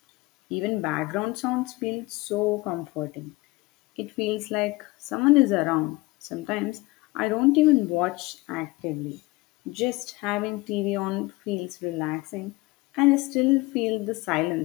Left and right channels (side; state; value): right; quieter; 22.0 dB